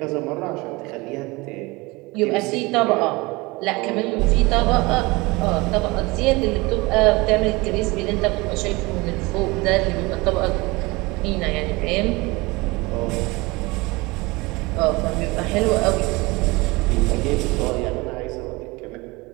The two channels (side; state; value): left; quieter; 23.6 dB